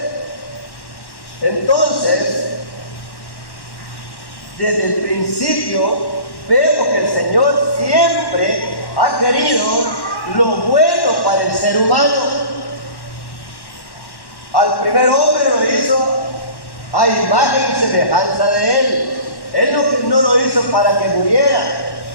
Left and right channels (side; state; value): right; late; 1.1 ms